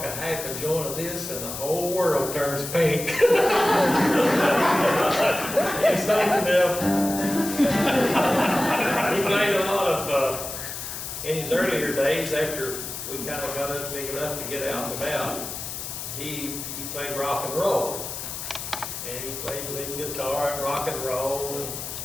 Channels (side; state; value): left; noise; hiss, 7 dB below the sound